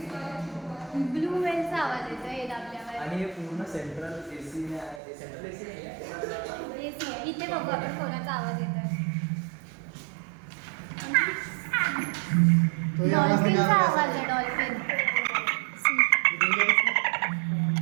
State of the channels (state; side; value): drops out; left; at 5.0 s